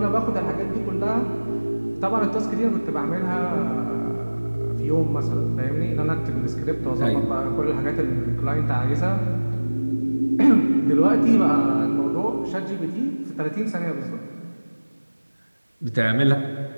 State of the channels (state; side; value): inverted; both; correlation -1.00